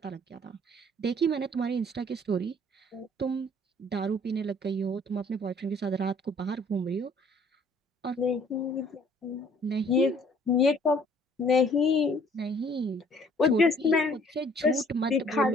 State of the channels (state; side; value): normal; both; correlation 0.58